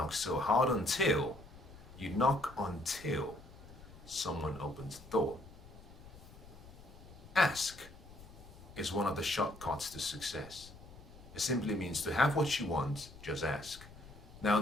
so hard until someone opens the door. Ask is one of the shortcuts to success. It simply means to have what you want, just ask. Now,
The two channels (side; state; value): left; noise; rumble, 18 dB below the sound